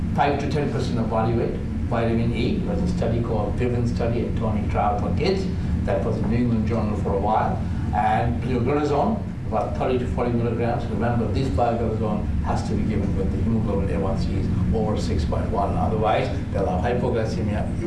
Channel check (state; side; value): identical; both; correlation 1.00